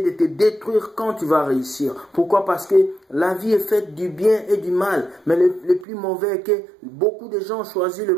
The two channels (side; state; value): left; drops out; at 5.9 s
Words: de te détruire quand tu vas réussir. Pourquoi? Parce que la vie est faite du bien et du mal. Mais le plus mauvais est que beaucoup de gens ont choisi le